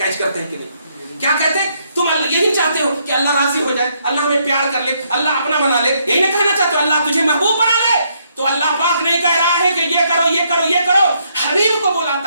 کرتے ہیں کہ نہیں؟ کیا کہتے ہیں؟ تم یہی چاہتے ہو کہ اللہ راضی ہو جائے، اللہ ہمیں پیار کر لے، اللہ اپنا بنا لے، یہی نہیں کہنا چاہتے ہو اللہ تجھے محبوب بنا لے؟ تو اللہ پاک نہیں کہہ رہا ہے کہ یہ کرو یہ کرو یہ کرو، حبیب کو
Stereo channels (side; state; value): both; inverted; correlation -0.73